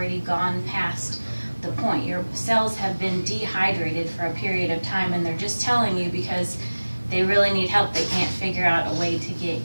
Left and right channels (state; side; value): inverted; both; correlation -1.00